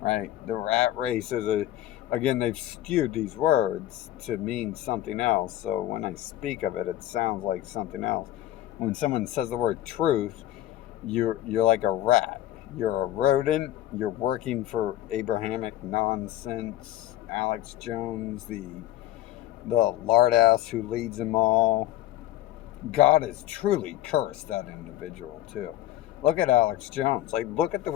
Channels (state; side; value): quieter; right; 13.9 dB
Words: Right? The rat race is again, they've skewed these words to mean something else. So when I speak of it, it sounds like something else. When someone says the word truth, you're like a rat. You're a rodent. You're working for Abrahamic nonsense. Alex Jones, the lard ass who leads them all. God has truly cursed that individual too. Look at Alex Jones. Like, look at the